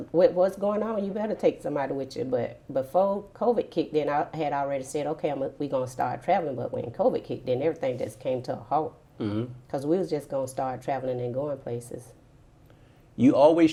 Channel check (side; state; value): both; identical; correlation 1.00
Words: with what's going on, you better take somebody with you. But before COVID kicked in, I had already said, okay, we're going to start traveling. But when COVID kicked in, everything just came to a halt. Because we was just going to start traveling and going places. You always